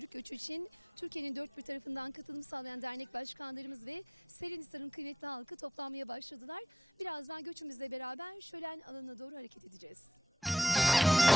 göçü için Türkiye'nin dört bir tarafından katılım sağlayan dernek başkanlarımız ve Serinhisar'ın kıymetli halkı toplanmaya başladılar. Birazdan göçümüzle beraber şölen alanına doğru hareket edeceğiz.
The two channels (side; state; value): both; normal; correlation 0.70